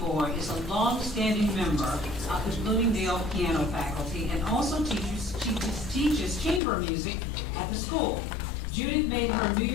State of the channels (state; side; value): drops out; right; at 6.6 s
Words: is a long-standing member of the Bloomingdale piano faculty and also teaches chamber music at the school. Judith made her New